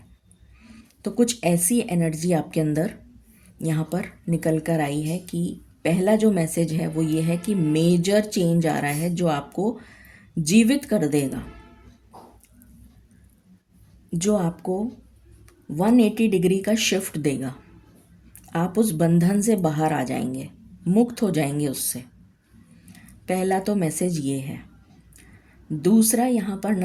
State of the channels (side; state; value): both; identical; correlation 1.00